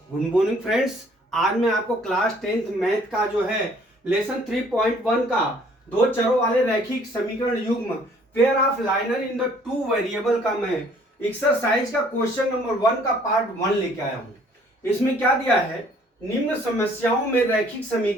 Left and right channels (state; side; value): normal; both; correlation 0.59